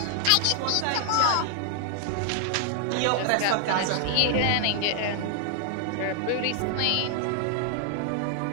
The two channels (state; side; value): different; both; correlation 0.00